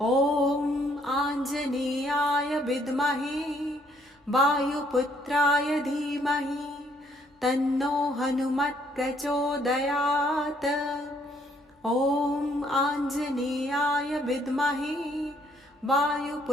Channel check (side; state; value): both; normal; correlation 0.67